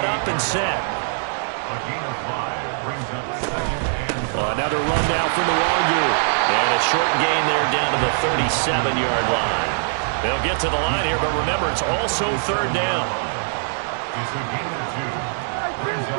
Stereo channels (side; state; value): left; silent; digital silence